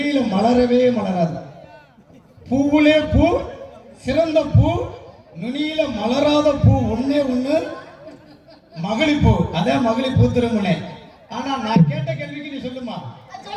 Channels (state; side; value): identical; both; correlation 1.00